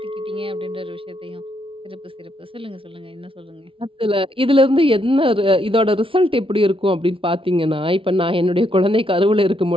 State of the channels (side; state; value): left; late; 0.26 ms